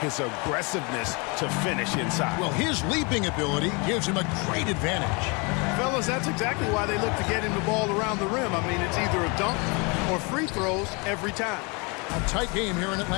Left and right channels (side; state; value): right; quieter; 30.5 dB